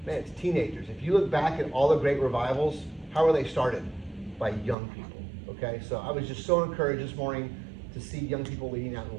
man, it's teenagers. If you look back at all the great revivals, how were they started? By young people, okay? So I was just so encouraged this morning to see young people leading out in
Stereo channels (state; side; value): drops out; left; at 4.8 s